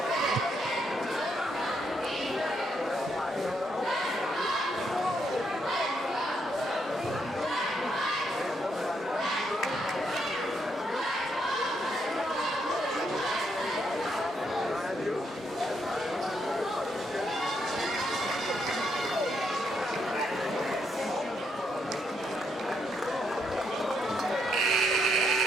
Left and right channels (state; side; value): normal; both; correlation 0.77